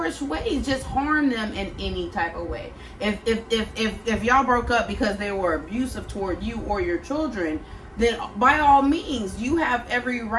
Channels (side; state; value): both; identical; correlation 1.00